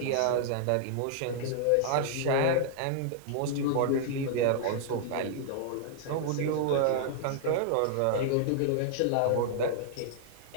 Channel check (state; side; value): different; both; correlation -0.01